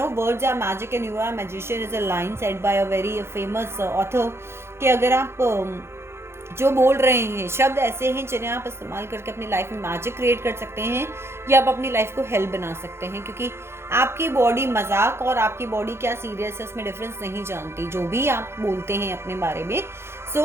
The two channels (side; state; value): left; late; 0.12 ms